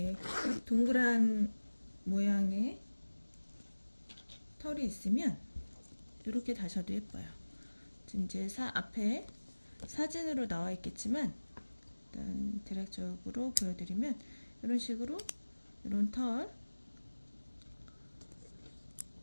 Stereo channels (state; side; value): inverted; both; correlation -1.00